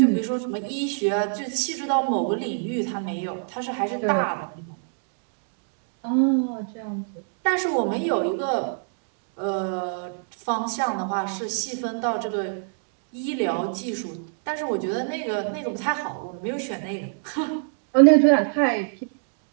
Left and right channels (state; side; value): silent; left; digital silence